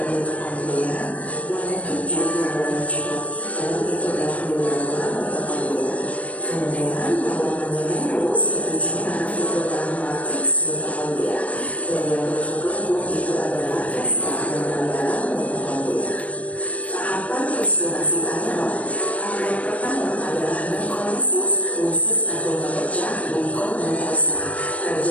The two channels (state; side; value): late; right; 0.067 ms